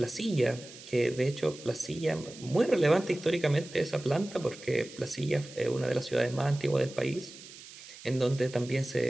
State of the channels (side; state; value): right; noise; hiss, 17 dB below the sound